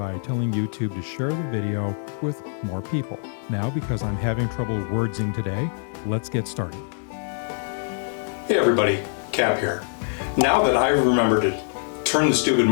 telling YouTube to share the video with more people. Now, because I'm having trouble wordsing today, let's get started. Hey everybody, Cap here. Now that I've remembered to turn the stupid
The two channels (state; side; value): silent; right; 62 dB below the other